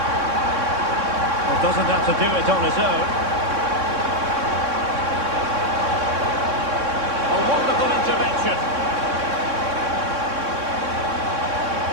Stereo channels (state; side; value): late; left; 3.6 ms